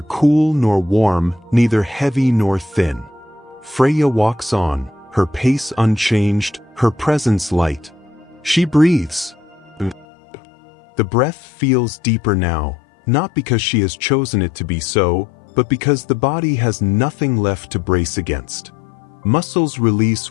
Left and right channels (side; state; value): right; drops out; at 10.1 s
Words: cool nor warm, neither heavy nor thin. Freya walks on, her pace unchanged, her presence light. She breathes. The breath feels deeper now, not because she has chosen it to be so, but because the body has nothing left to brace against. Muscles